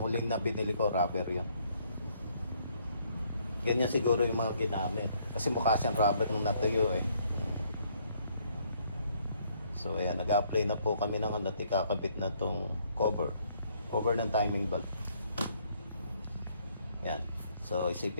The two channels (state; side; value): inverted; both; correlation -0.68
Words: huling na binili ko, rubber yun. Ganyan siguro yung mga ginamit. Kasi mukha siyang rubber nung natuyo eh. So ayan, nag-apply na po kami ng ano, ikakabit na tong cover. Cover ng timing belt. Yan. So